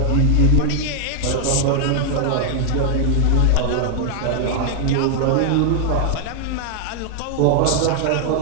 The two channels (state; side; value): different; both; correlation 0.00